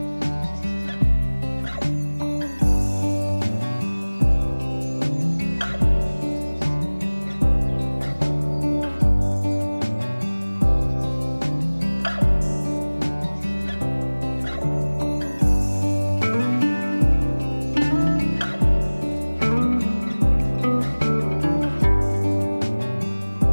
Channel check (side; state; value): both; inverted; correlation -1.00